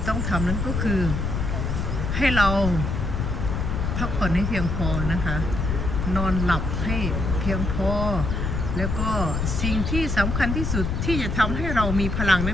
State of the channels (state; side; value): noise; left; rumble, 1 dB below the sound